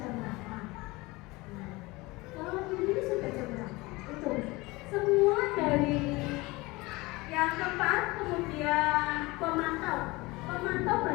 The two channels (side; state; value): right; quieter; 22.4 dB